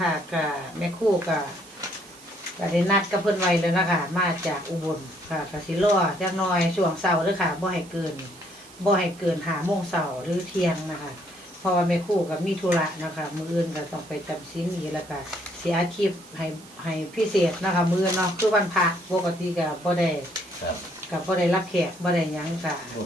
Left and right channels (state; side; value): noise; right; hiss, 21 dB below the sound